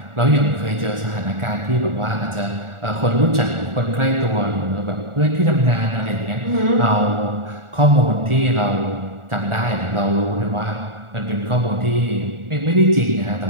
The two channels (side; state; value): left; late; 1.4 ms